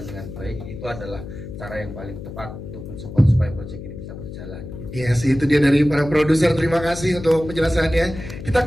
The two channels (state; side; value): noise; left; hum, 11 dB below the sound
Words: dengan baik, itu adalah cara yang paling tepat untuk mensupport supaya proyek ini bisa berjalan gitu. Yes, itu dia dari para produser. Terima kasih untuk penjelasannya. Kita